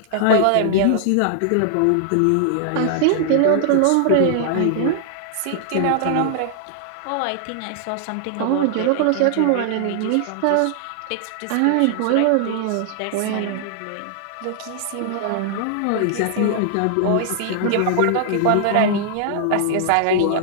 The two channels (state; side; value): different; both; correlation -0.01